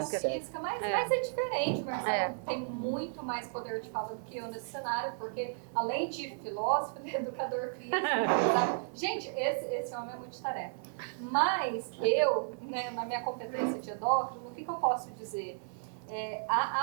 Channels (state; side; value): silent; left; 55 dB below the other